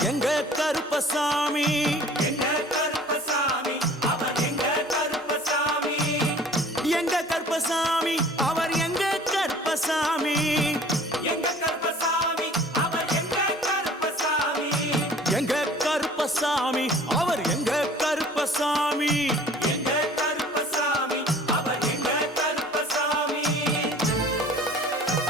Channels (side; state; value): both; normal; correlation 0.49